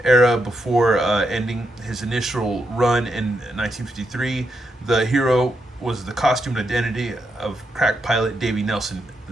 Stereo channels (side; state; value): both; normal; correlation 0.81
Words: era before ending his initial run in 1953. The hero was the costumed identity of crack pilot Davy Nelson